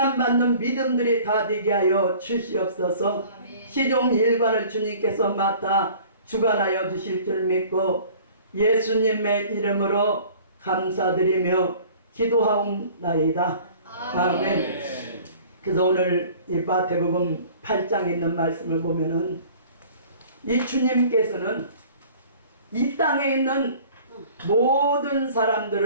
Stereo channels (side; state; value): both; inverted; correlation -0.48